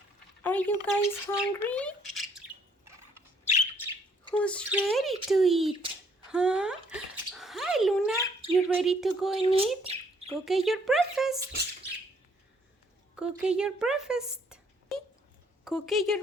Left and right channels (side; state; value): both; normal; correlation 0.66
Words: Are you guys hungry? Who's ready to eat? Huh? Hi, Luna. You ready to go and eat? Go get your breakfast. Go get your breakfast. Cookie, you